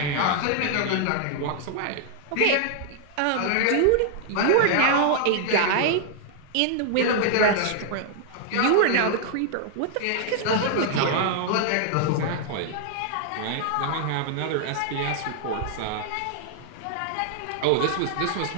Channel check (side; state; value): both; different; correlation 0.00